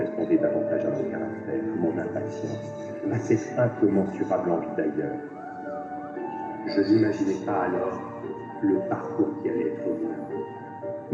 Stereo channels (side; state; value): both; identical; correlation 1.00